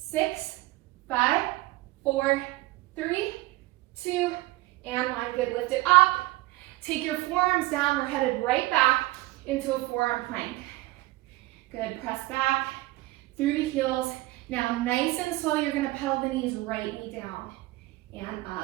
5, 4, 3, 2, and 1. Good, lift it up. Take your forearms down. We're headed right back into a forearm plank. Good, press back through the heels. Now, nice and slow, you're gonna pedal the knees, right knee down and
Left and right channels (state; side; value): quieter; left; 19.5 dB